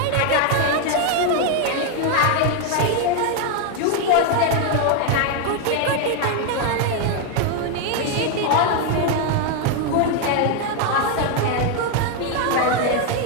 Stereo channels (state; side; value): different; both; correlation 0.01